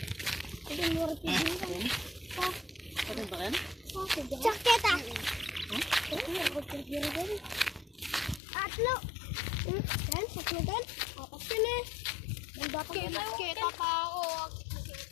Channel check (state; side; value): drops out; right; at 8.4 s